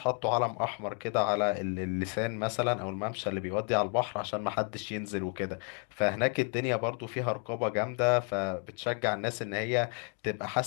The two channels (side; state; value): right; quieter; 39.8 dB